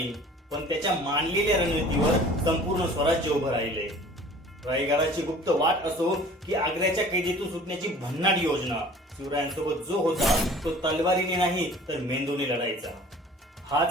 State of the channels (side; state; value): both; normal; correlation 0.47